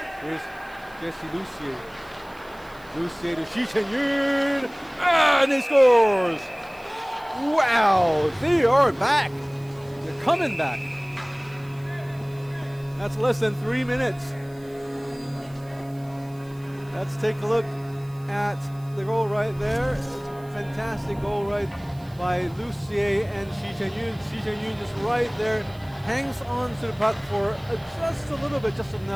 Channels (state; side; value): noise; right; hiss, 26 dB below the sound